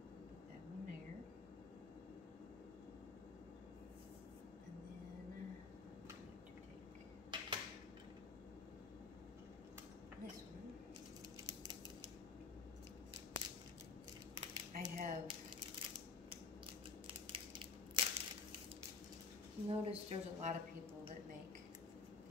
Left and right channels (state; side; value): quieter; right; 4.6 dB